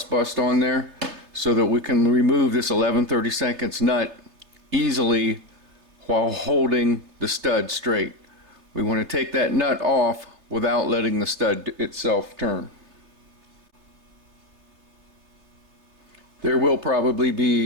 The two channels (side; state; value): left; late; 3.3 ms